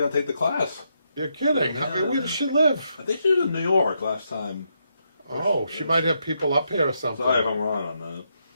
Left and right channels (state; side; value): inverted; both; correlation -0.80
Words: to take the class. You're kidding. Yeah. I mean, where does she live? I think she was in New York last time. Oh, she might have people up here or something. Sorry if I'm wrong on that.